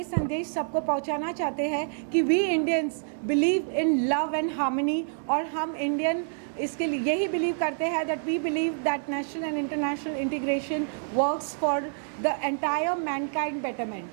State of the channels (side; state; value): left; silent; digital silence